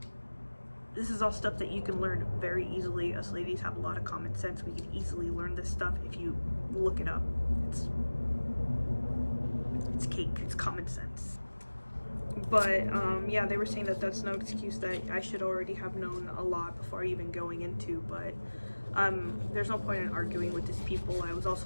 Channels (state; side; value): inverted; both; correlation -1.00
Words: This is all stuff that you can learn very easily. Us ladies have a lot of common sense. We can easily learn this stuff if you look it up. It's cake, it's common sense. But yeah, they were saying that that's no excuse, that I should already have known a lot before even going into, but there's no point in arguing with these people. I was